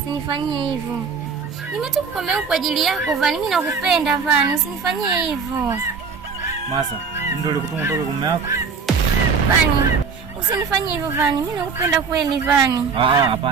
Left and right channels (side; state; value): left; quieter; 5.5 dB